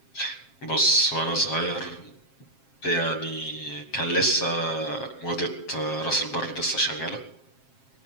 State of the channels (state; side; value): late; right; 7.5 ms